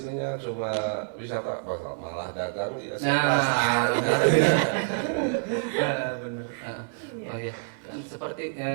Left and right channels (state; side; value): silent; left; digital silence